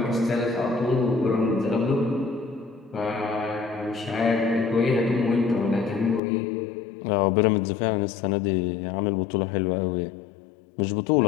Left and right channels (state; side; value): drops out; right; at 6.2 s